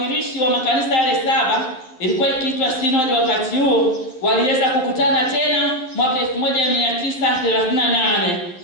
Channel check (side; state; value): right; late; 12 ms